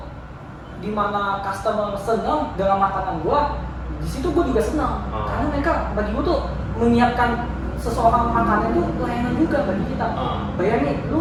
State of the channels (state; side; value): identical; both; correlation 1.00